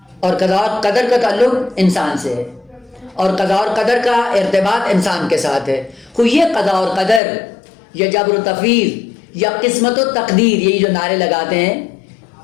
اور قضاء اور قدر کا تعلق انسان سے ہے اور قضاء اور قدر کا ارتباط انسان کے ساتھ ہے. تو یہ قضاء اور قدر یا جبر و تفویض یا قسمت و تقدیر، یہی جو نعرے لگاتے ہیں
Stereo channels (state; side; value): drops out; right; at 7.2 s